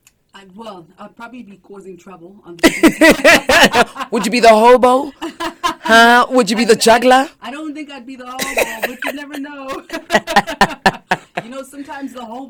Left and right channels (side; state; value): both; identical; correlation 1.00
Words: I'd probably be causing trouble on the streets. Would you be the hobo? Would you be the juggler? I don't think I'd be the hobo, but you never know. Sometimes the